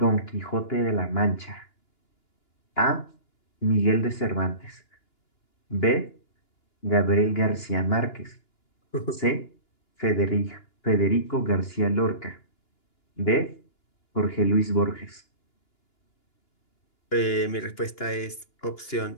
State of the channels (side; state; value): right; late; 2.9 ms